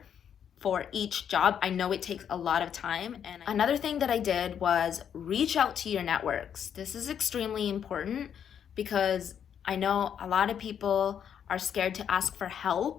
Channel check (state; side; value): quieter; right; 8.5 dB